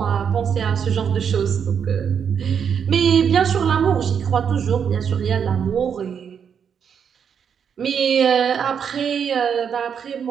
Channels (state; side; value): quieter; left; 7.4 dB